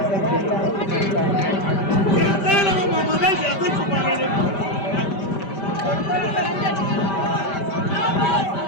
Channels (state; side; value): late; right; 5.1 ms